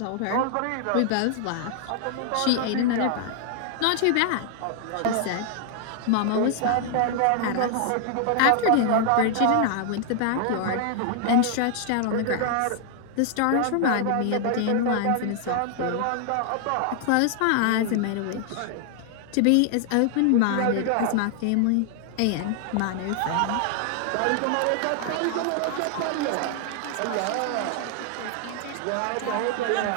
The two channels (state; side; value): different; both; correlation 0.00